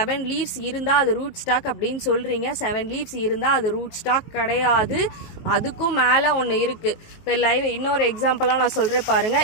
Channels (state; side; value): late; right; 19 ms